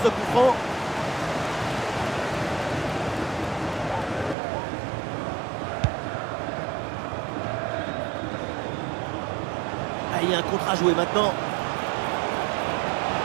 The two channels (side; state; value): left; drops out; at 4.4 s